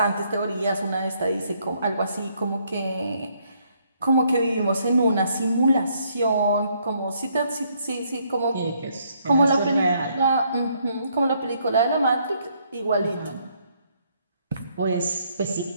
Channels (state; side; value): inverted; both; correlation -0.70